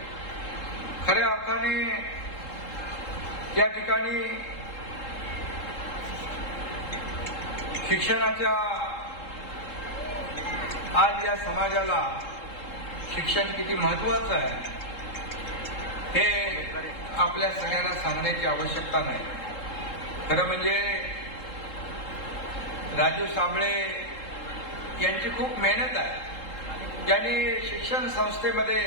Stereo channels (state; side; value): late; right; 3.7 ms